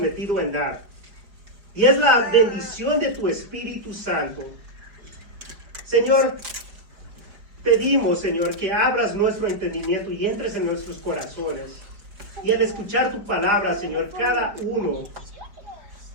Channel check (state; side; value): late; left; 4.7 ms